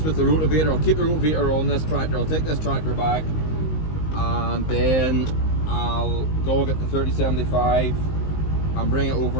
the rotivator. I'll keep the rotivator on this tractor. I'll take this tractor back and then I'll go get the 3075 and bring it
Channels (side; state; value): right; late; 19 ms